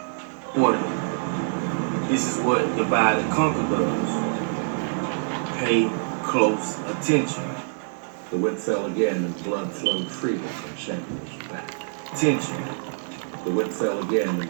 This is what divide and conquer does. Pay close attention. The whip fell again and blood flowed freely from Samuel's back. Attention. The whip fell again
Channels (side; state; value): left; silent; 61 dB below the other